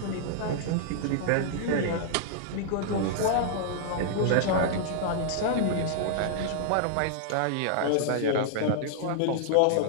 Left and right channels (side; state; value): both; different; correlation -0.01